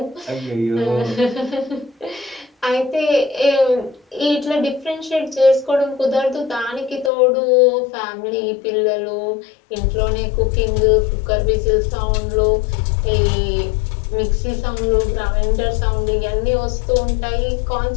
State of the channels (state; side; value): drops out; right; at 7.1 s